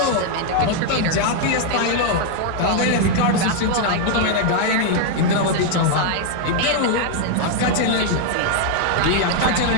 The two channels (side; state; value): both; different; correlation 0.00